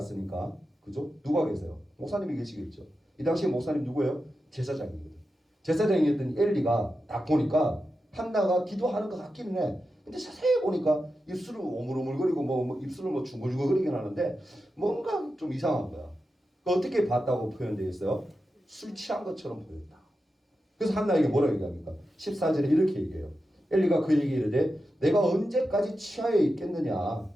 그죠? 누가 계세요? 목사님이 계시겠죠. 이 당시에 목사님 누구예요? 제사장이거든. 제사장이었던 엘리가 딱 보니까 한나가 기도하는 것 같기는 해. 근데 자세히 보니까 입술을 오물오물거리고 뭐 입술을 뭐 중글중글거리긴 하는데 뭔가 좀 이상한 거야. 어떻게 봤다고 표현되어 있어요? 술 취한 것처럼 보였다. 그래서 한나에게 뭐라고 얘기합니까? 14절에 이렇게 얘기해요. 엘리가 그 얘기를 이르되 내가 언제까지 취하여 있겠느냐.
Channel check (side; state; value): both; normal; correlation 0.90